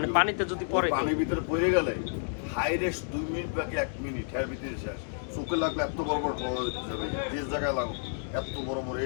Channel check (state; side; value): silent; right; digital silence